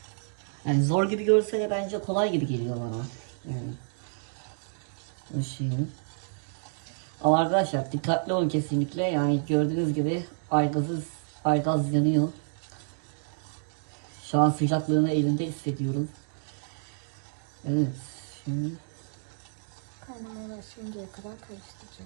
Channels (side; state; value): left; silent; digital silence